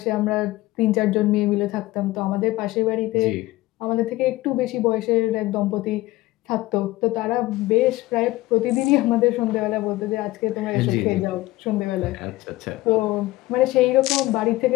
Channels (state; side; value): quieter; right; 18.2 dB